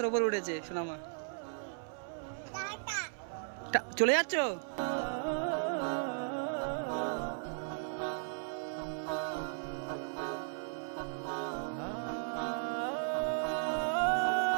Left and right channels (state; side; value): silent; left; 54 dB below the other